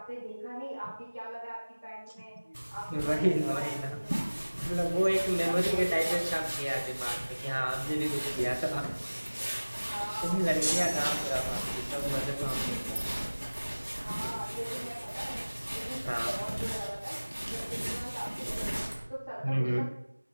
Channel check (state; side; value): inverted; both; correlation -1.00